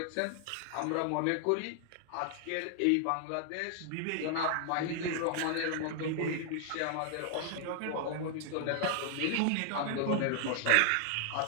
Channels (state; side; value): different; both; correlation 0.00